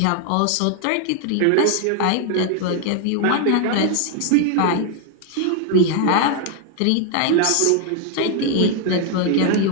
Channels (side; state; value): both; different; correlation 0.00